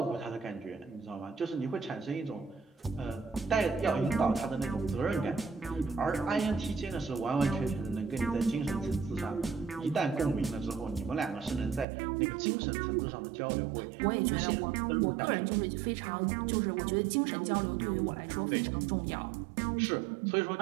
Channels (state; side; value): drops out; left; at 11.9 s